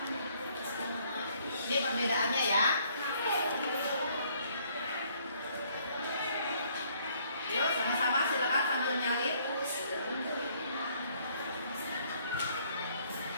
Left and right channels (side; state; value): both; inverted; correlation -0.64